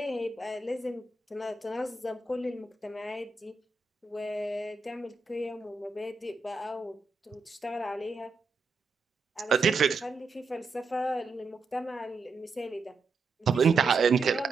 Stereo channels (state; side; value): quieter; left; 4.0 dB